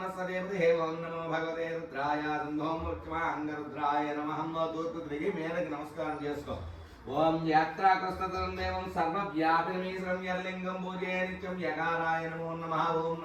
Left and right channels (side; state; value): both; identical; correlation 1.00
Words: ఓం నమో భగవతే రుద్రాయ ఓం పశ్చిమాంగ రుద్రాయ నమః. తూర్పు తిరిగి మేరకు నమస్కారం చేసుకో. ఓం యాత్రాకృష్టం దేవం సర్వవ్యాపినమీశ్వరం యర్లింగం పూజే నిత్యం యకారాయ నమో నమః. ఓం